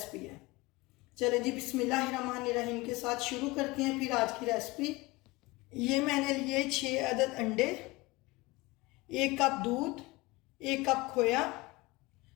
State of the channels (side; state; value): right; quieter; 22.2 dB